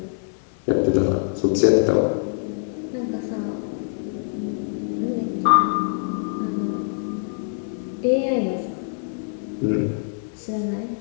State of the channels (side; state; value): right; silent; 60 dB below the other